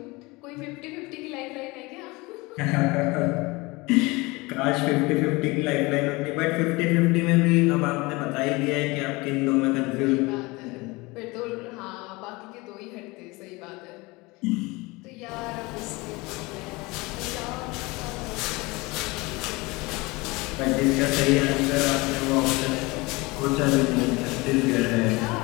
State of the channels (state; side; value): quieter; right; 23.7 dB